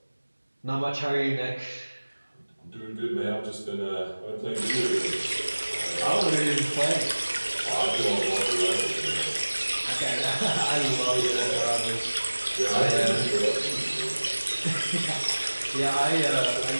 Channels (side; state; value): both; inverted; correlation -1.00